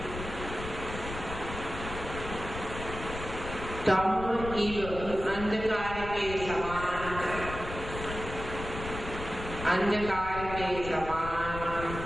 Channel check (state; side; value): noise; left; rumble, 9 dB below the sound